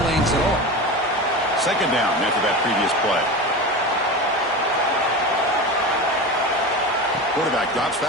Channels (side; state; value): both; normal; correlation 0.26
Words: lanes at all. Second down after that previous play. Quarterback drops